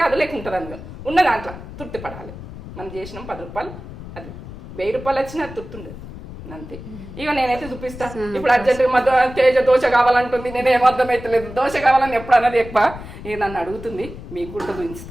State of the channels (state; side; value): noise; left; rumble, 13 dB below the sound